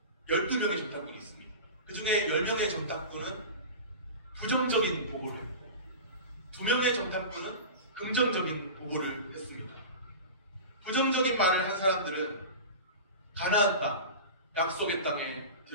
12명의 정탐꾼이 있습니다. 그 중에 10명의 정탐꾼은 부정적인 보고를 했고 2명의 정탐꾼은 긍정적인 보고를 했습니다. 부정적인 말을 한 사람들은 가나안 땅, 약속의 땅에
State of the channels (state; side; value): inverted; both; correlation -0.30